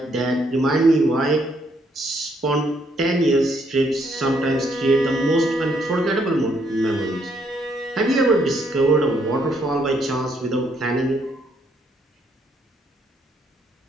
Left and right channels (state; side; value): normal; both; correlation 0.71